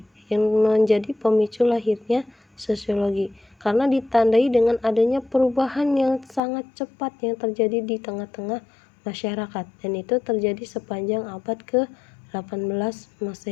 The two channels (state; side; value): drops out; right; at 6.4 s